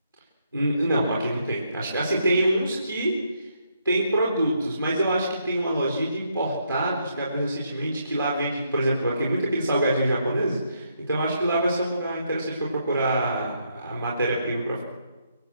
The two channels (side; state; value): both; inverted; correlation -0.76